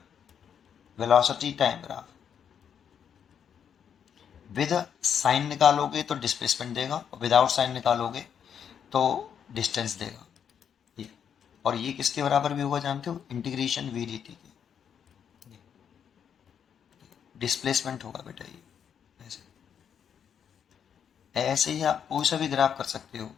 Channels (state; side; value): quieter; right; 8.0 dB